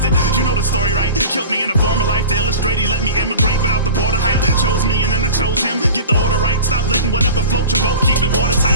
You know the story, right? Killed me in a former life to illustrate. He let me immigrate without the border hype. Chose me and then I chose him. Get the order right. Stop letting whatever float your boat. Keep it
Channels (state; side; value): inverted; both; correlation -0.36